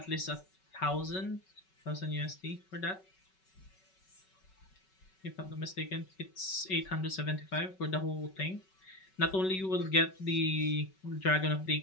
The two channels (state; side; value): late; right; 5.3 ms